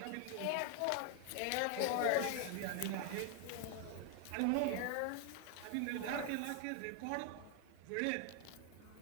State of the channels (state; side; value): different; both; correlation 0.01